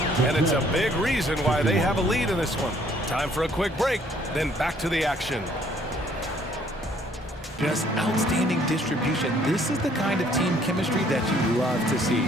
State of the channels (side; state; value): both; normal; correlation 0.62